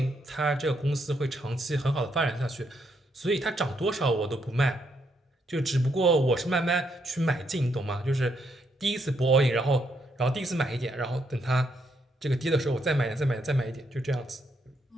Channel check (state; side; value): normal; both; correlation 0.76